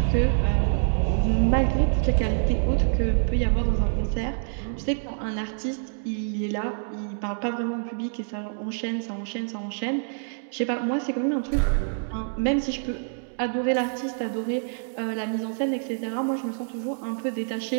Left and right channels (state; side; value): silent; left; digital silence